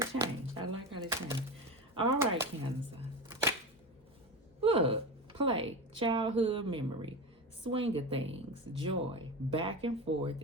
I like how they changed. All right, Cancer. Look, play, childhood memory. Swing of things, joy, back and forth,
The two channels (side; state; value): both; normal; correlation 0.23